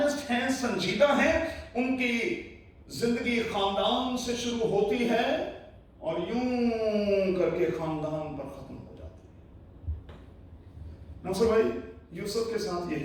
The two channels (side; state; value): both; identical; correlation 1.00